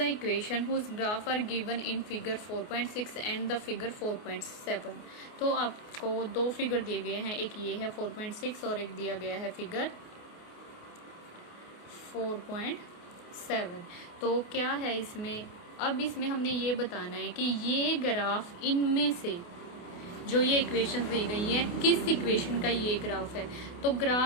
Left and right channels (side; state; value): right; late; 28 ms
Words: whose graph are given in figure 4.6 and the figure 4.7। तो आपको दो फिगर दिए गए हैं, एक ये है 4.6 और एक दिया गया है फिगर 4.7। तो क्या है इसमें, अब इसमें हमने ये बताना है कि ये ग्राफ इनमें से जो ये इक्वेशन दी गई है किस इक्वेशन का ये ग्राफ है। तो